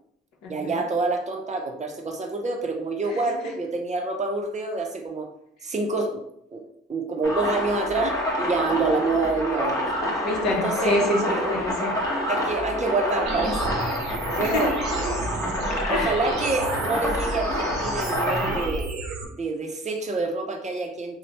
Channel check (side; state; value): both; normal; correlation 0.42